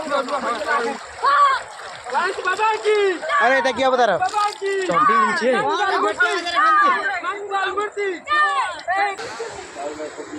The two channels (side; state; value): both; identical; correlation 1.00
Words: गणेश बाबा की अरे এটা কি অবতার চন্ডি নিচে मंगल मूर्ति